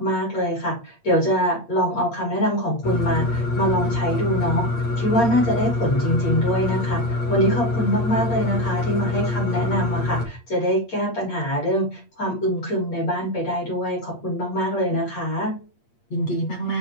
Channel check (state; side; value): late; right; 8.6 ms